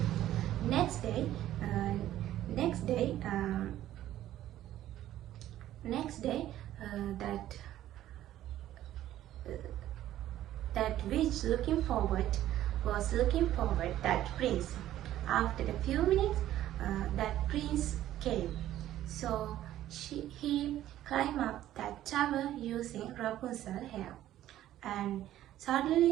Next day, that witch was looking forward that prince. After a few minutes, that prince came. So he climbed up that tower using Rapunzel's hair, and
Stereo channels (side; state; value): left; quieter; 13.1 dB